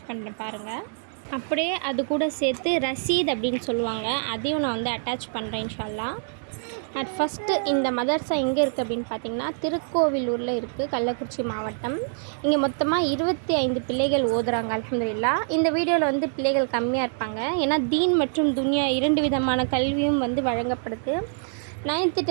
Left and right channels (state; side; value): silent; left; digital silence